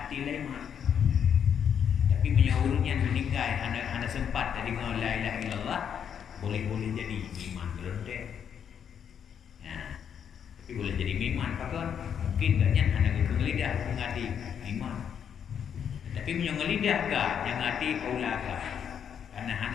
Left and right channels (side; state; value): right; quieter; 8.2 dB